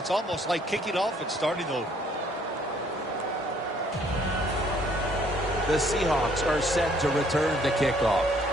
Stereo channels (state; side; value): normal; both; correlation 0.63